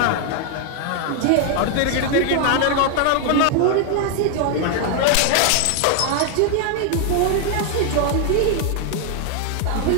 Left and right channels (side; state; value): both; different; correlation 0.00